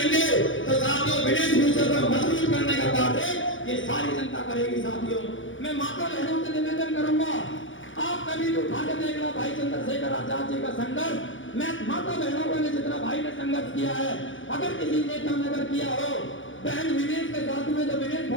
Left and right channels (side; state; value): right; late; 0.56 ms